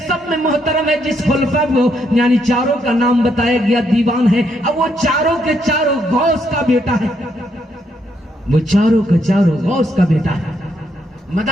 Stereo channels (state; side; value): normal; both; correlation 0.75